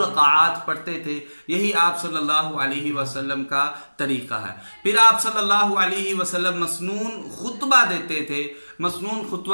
पढ़ते थे। यही आप सल्लल्लाहु अलैहि वसल्लम का तरीका है। फिर आप सल्लल्लाहु अलैहि वसल्लम मसनून खुतबा देते थे। मसनून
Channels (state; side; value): inverted; both; correlation -1.00